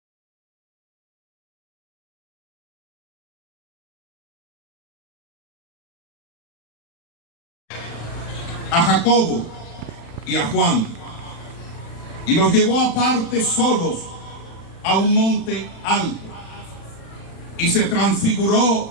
A Jacobo y a Juan, y los llevó aparte solos a un monte alto, y se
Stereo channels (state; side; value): late; right; 35 ms